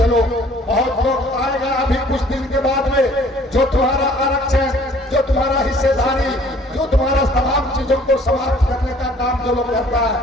बहुत लोग आएगा अभी कुछ दिन के बाद में, जो तुम्हारा आरक्षण, जो तुम्हारा हिस्सेदारी, जो तुम्हारा तमाम चीजों को समाप्त करने का काम जो लोग करता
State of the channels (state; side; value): normal; both; correlation 0.55